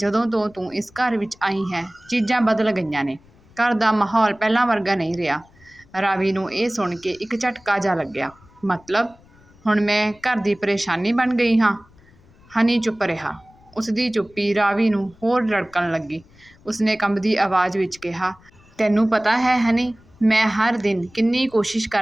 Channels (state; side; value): noise; left; rumble, 28 dB below the sound